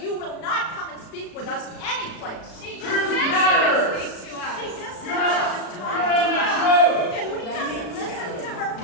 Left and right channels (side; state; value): right; late; 36 ms